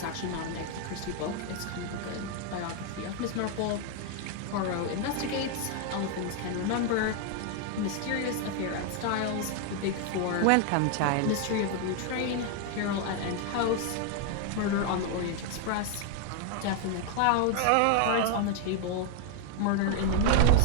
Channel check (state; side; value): different; both; correlation 0.00